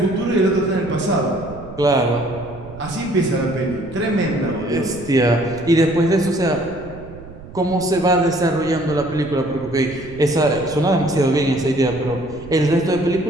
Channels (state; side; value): noise; right; rumble, 16 dB below the sound